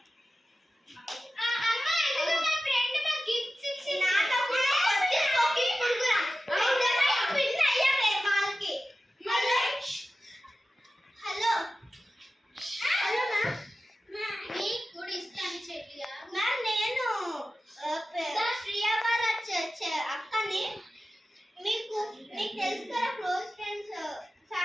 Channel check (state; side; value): normal; both; correlation 0.94